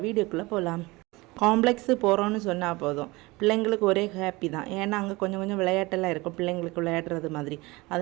வீடியோக்குள்ளே போகலாம். காம்ப்ளெக்ஸு போகிறோன்னு சொன்னால் போதும், பிள்ளைங்களுக்கு ஒரே ஹாப்பி தான். ஏன்னா அங்கே கொஞ்சம் கொஞ்சம் விளையாட்டெல்லாம் இருக்கும், பிள்ளைங்களுக்கு விளையாடுறது மாதிரி.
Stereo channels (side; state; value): left; quieter; 22.6 dB